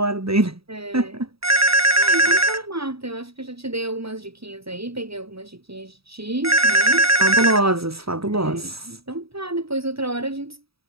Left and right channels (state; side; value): late; left; 0.77 ms